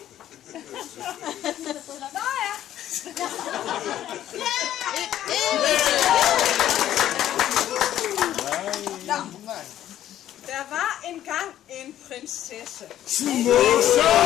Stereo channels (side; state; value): right; quieter; 12.0 dB